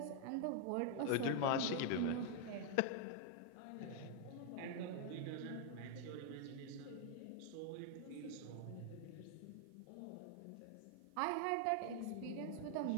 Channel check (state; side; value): different; both; correlation 0.00